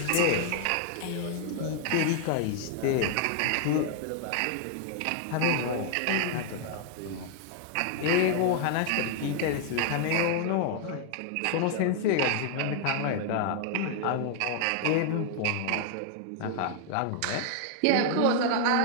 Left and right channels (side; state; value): both; different; correlation 0.00